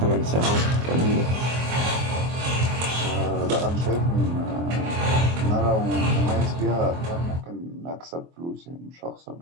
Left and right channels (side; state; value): left; late; 24 ms